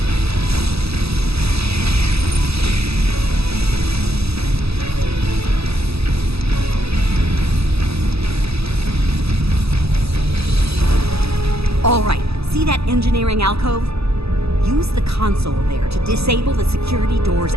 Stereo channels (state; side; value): late; left; 0.78 ms